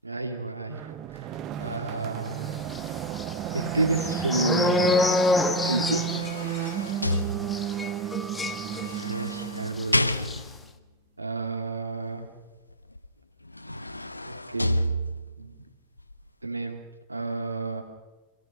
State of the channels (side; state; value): both; normal; correlation -0.07